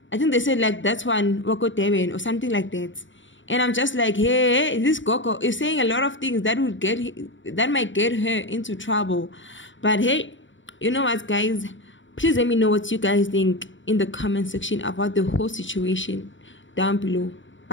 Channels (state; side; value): late; right; 0.55 ms